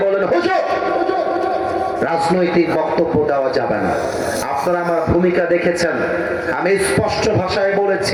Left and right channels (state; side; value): identical; both; correlation 1.00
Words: বলেন, হুজুর রাজনৈতিক বক্তব্য দেওয়া যাবে না। আপনারা আমার ভূমিকা দেখেছেন, আমি স্পষ্ট ভাষায়